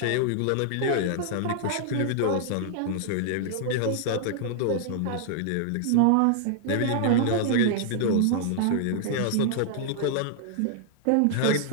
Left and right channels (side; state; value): both; different; correlation -0.01